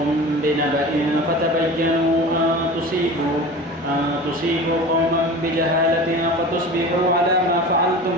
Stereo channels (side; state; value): both; normal; correlation 0.35